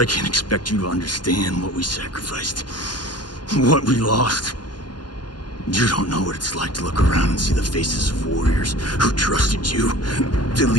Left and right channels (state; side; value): late; right; 0.71 ms